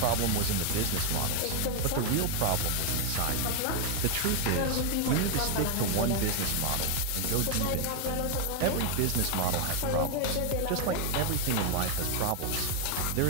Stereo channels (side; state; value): both; different; correlation 0.01